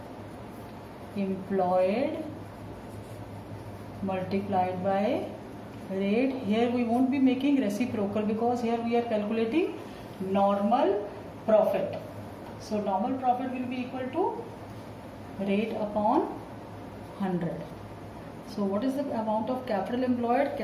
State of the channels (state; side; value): identical; both; correlation 1.00